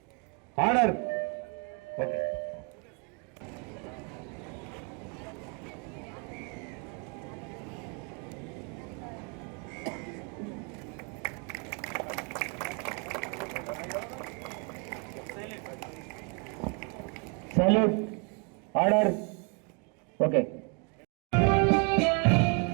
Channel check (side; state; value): left; quieter; 34.6 dB